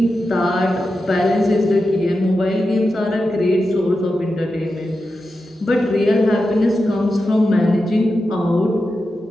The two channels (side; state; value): both; normal; correlation 0.90